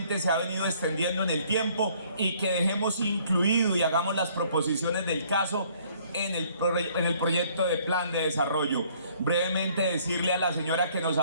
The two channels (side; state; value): both; inverted; correlation -0.60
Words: se ha venido extendiendo en el tiempo y que dejemos incluido y hagamos las proposiciones del caso en el proyecto de plan de desarrollo. Brevemente decirle a la señora que nos